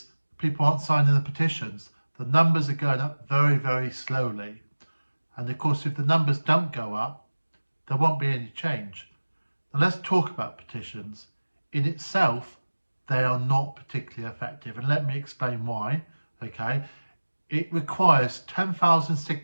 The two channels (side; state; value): both; inverted; correlation -1.00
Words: people aren't signing the petitions. The numbers are going up very, very slowly. And of course, if the numbers don't go up, there won't be any change. Now let's talk about petitions. In itself, they are not particularly effective, and let me explain why. Okay, it requires 10,000